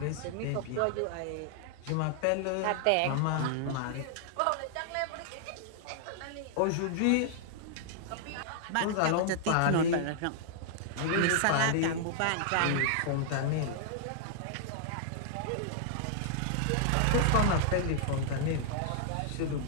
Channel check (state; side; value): different; both; correlation -0.01